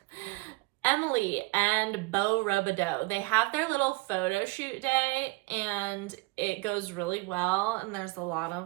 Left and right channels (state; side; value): quieter; left; 25.0 dB